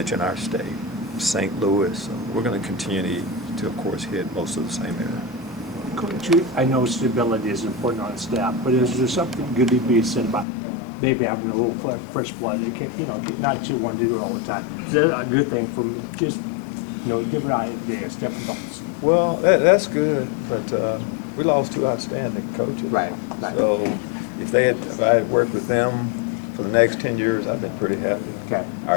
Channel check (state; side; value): drops out; right; at 10.5 s